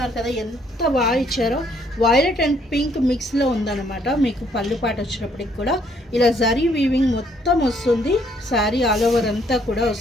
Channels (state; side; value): normal; both; correlation 0.67